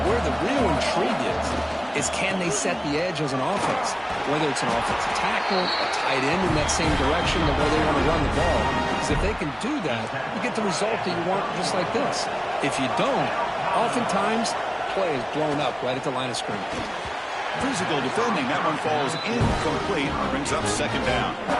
where the real intrigue is can they set the edge as an offense? Whether it's an offensive tackle, a tight end in that same direction, the way they want to run the ball. Because if they can do that, you get the result that you want just like this. If you don't, oftentimes, the play is blown up right at the line of scrimmage. Physical defending. That one falls incomplete. Brings up second down.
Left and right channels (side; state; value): both; identical; correlation 1.00